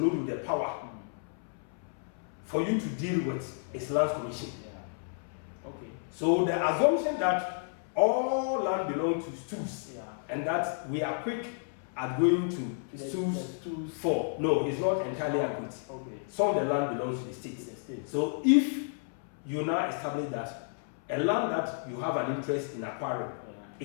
with the power for you to deal with is Lands Commission. So the assumption that all land belongs to stools and that we are quick at going to stools for, no, it's not entirely accurate. Some of the land belongs to the state. So if you now establish that a land that you have an interest in acquiring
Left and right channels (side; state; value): right; silent; 56 dB below the other